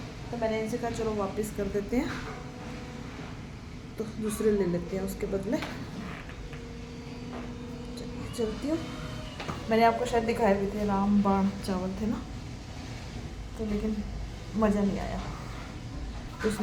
तो मैंने इनसे कहा चलो वापस कर देते हैं, तो दूसरे ले लेते हैं उसके बदले। चलती हूँ। मैंने आपको शायद दिखाए भी थे, रामबाण चावल थे ना, तो लेकिन मज़ा नहीं आया। तो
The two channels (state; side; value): identical; both; correlation 1.00